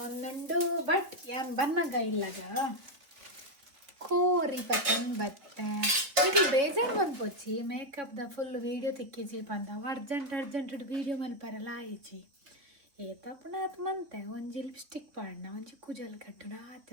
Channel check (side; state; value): left; late; 3.9 ms